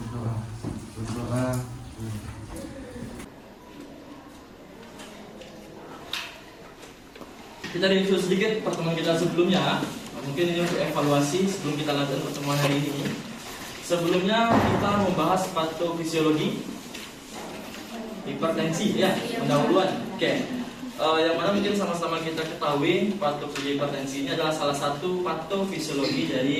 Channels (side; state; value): both; identical; correlation 1.00